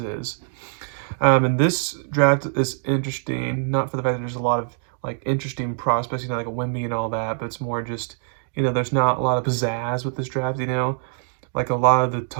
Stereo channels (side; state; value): left; silent; digital silence